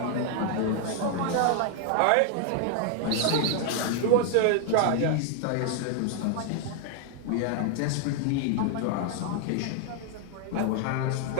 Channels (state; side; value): different; both; correlation 0.00